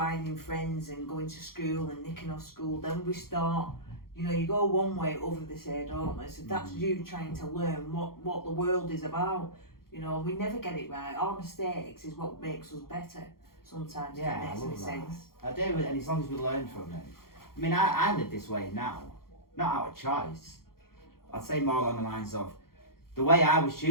friends and going to school and nicking off school. Then we start, you go one way, over the say, don't we? So that's you trying to learn what the world is about. We never get it right. Our mistakes is what makes us better sometimes. Yeah, it makes any sense. I do, and as long as we learn from it. I mean, I live this way now, not out of choice, I'd say more along the lines of the way I was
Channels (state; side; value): late; right; 0.93 ms